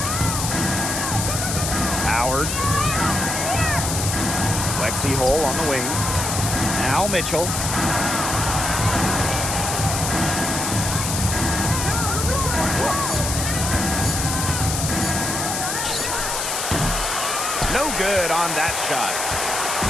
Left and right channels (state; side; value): noise; left; hiss, 2 dB below the sound